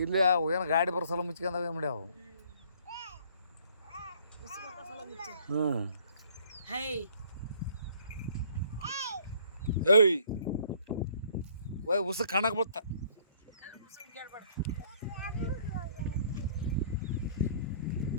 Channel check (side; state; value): both; inverted; correlation -0.59